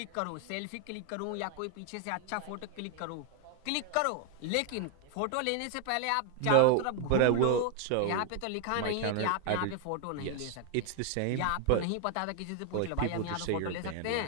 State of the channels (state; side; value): different; both; correlation 0.00